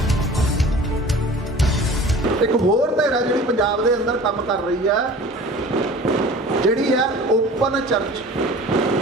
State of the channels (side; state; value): both; normal; correlation 0.42